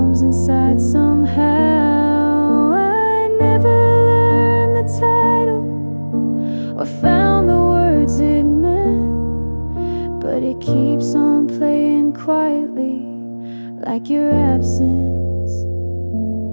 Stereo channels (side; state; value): both; inverted; correlation -1.00